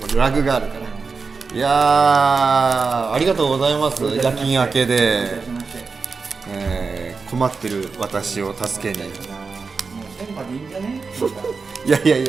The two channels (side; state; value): left; quieter; 4.7 dB